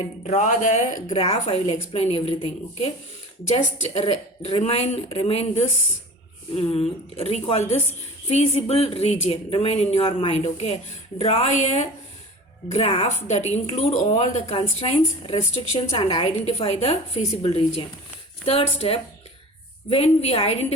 draw the graph, I will explain everything. Okay, just remain this, recall this feasible region, remain in your mind. Okay, draw a graph that include all the constraints, restrictions and identify the feasible region. Third step, when we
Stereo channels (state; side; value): normal; both; correlation 0.37